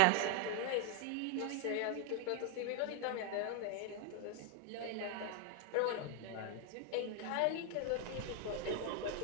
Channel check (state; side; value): different; both; correlation 0.00